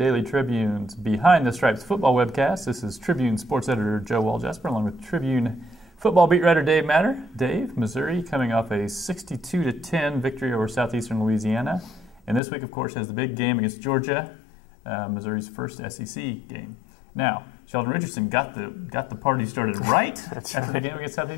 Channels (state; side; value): drops out; right; at 12.4 s